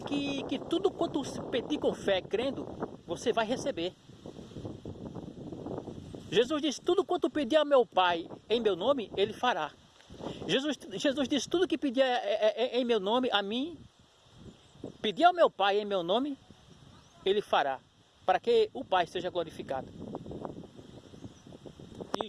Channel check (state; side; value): identical; both; correlation 1.00